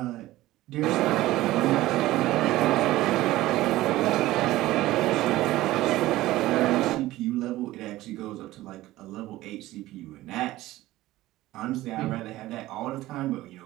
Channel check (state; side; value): quieter; left; 16.7 dB